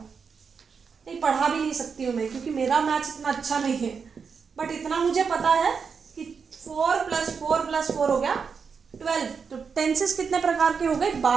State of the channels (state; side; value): quieter; left; 5.8 dB